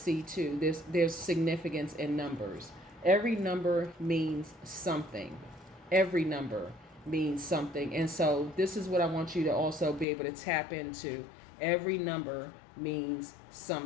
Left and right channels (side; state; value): right; drops out; at 10.1 s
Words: too. There's significance in numbers. Every number means something. Every number means something. And so this is what I want you to also be able to tap into. Every number means